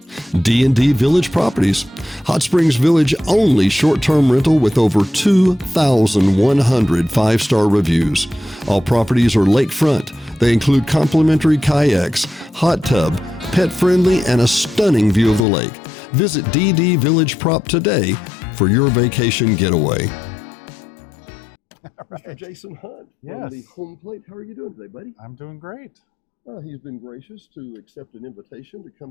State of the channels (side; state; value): right; drops out; at 15.4 s